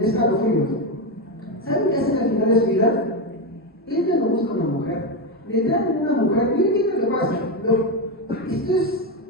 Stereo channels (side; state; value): both; normal; correlation 0.10